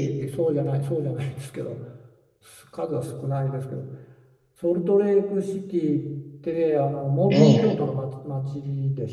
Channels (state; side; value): identical; both; correlation 1.00